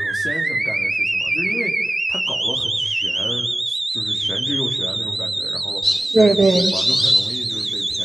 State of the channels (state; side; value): normal; both; correlation 0.96